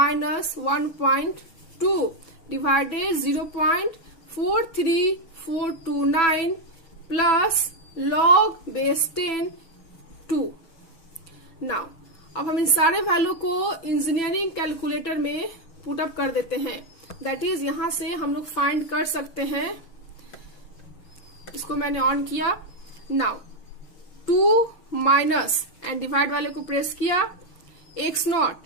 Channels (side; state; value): right; late; 6.0 ms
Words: 1.2 divided 0.43429 plus log base 10 2। Now अब हम इन सारे वैल्यू को इंजीनियरिंग कैलकुलेटर में पुट अप कर देते हैं, दैट इज यहां से हम लोग फाइंड कर सकते हैं, इसको मैंने ऑन किया। नाउ 2 माइनस एंड डिवाइड वाले को प्रेस किया, x नॉट